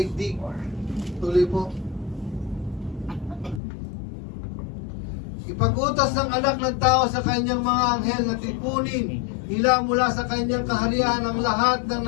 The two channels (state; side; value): drops out; right; at 3.6 s